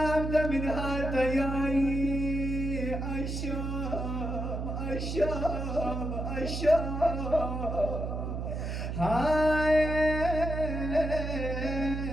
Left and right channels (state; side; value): noise; right; hum, 3 dB below the sound